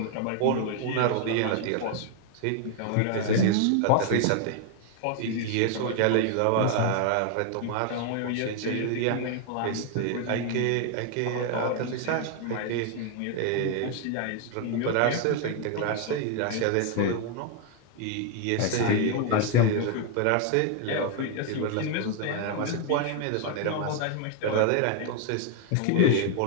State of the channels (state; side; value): different; both; correlation 0.00